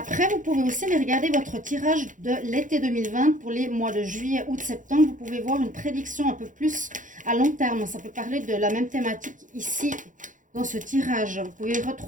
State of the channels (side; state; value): left; late; 0.37 ms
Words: vous pouvez aussi aller regarder votre tirage de l'été 2020 pour les mois de juillet, août, septembre. Vous pouvez voir une prédiction un peu plus à long terme. Ça peut parler de la même thématique ici dans ce tirage. Vous pouvez